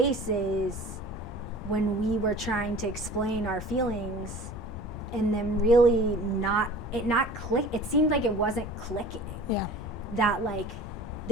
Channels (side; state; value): both; normal; correlation 0.43